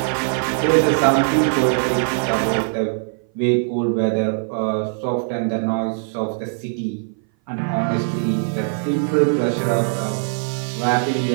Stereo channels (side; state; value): left; silent; 59 dB below the other